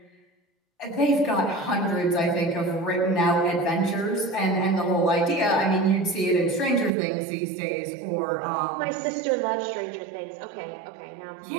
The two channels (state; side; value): drops out; left; at 6.9 s